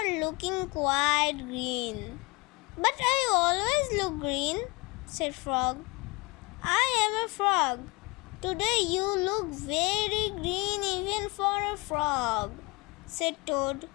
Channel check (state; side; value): quieter; right; 25.7 dB